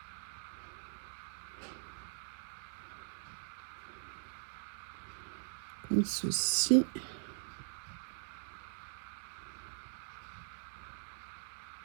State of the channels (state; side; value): silent; left; digital silence